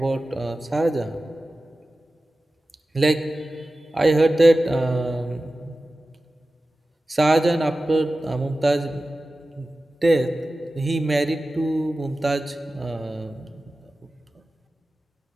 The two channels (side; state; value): both; normal; correlation 0.95